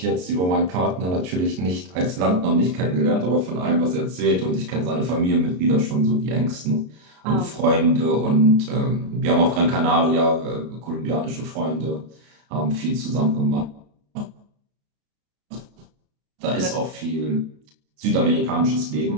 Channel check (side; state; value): left; late; 33 ms